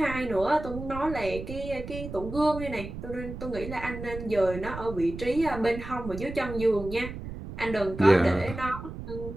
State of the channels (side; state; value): right; noise; rumble, 9 dB below the sound